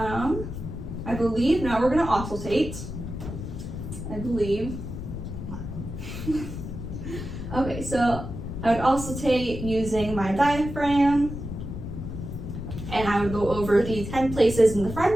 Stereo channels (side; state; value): left; noise; rumble, 7 dB below the sound